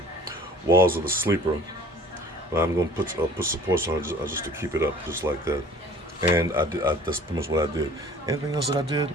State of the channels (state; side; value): normal; both; correlation 0.49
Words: walls of the sleeper. But I'm going to put supports on it just to keep it up, just like that. And that's pretty much what I did. Anything else that I did